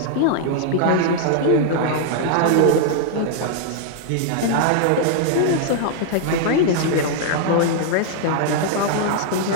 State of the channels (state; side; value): different; both; correlation -0.01